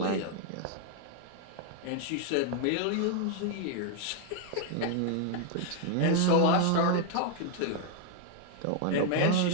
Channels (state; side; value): different; both; correlation 0.00